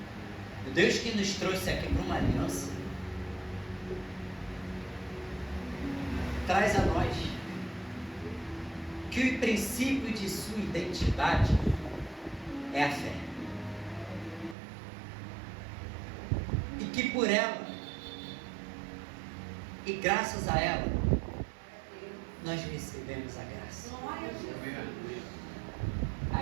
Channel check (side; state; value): left; drops out; at 14.6 s